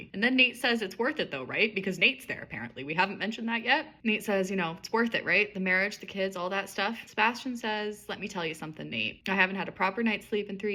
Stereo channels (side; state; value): both; identical; correlation 1.00